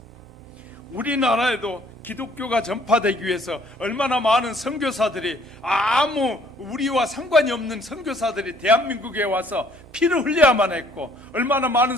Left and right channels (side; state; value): both; normal; correlation 0.61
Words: 우리나라에도 기독교가 전파되기 위해서 얼마나 많은 선교사들이, 아무 우리와 상관이 없는 선교사들이 대한민국에 와서 피를 흘려야만 했고, 얼마나 많은